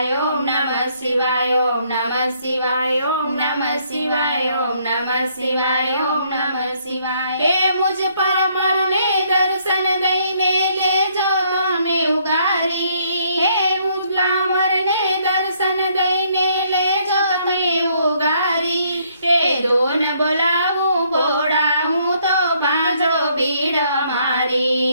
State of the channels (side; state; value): both; inverted; correlation -0.68